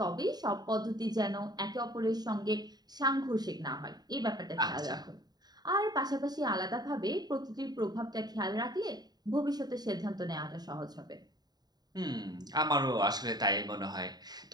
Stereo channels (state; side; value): late; left; 0.20 ms